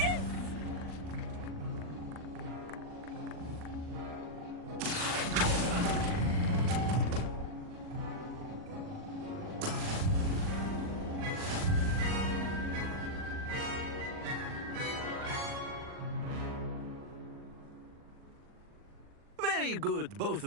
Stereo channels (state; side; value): late; left; 40 ms